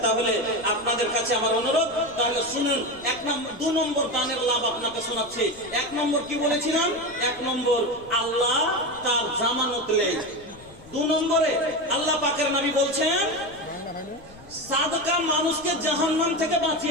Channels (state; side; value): noise; left; rumble, 22 dB below the sound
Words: তাহলে আপনাদের কাছে আমার অনুরোধ, তাহলে শুনুন। 2 নম্বর দানের লাভ আপনাকে শোনাচ্ছি। 1 নম্বর কি বলেছিলাম? 1 নম্বর আল্লাহ তার জামানত লেয়। 2 নম্বরে আল্লাহ পাকের নবী বলছেন সাদকা মানুষকে জাহান্নাম থেকে